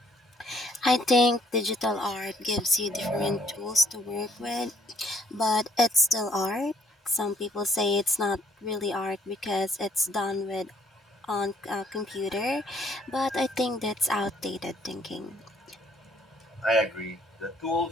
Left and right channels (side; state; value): both; normal; correlation 0.65